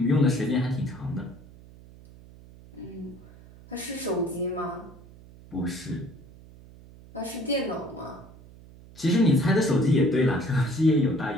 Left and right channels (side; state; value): right; noise; hum, 21 dB below the sound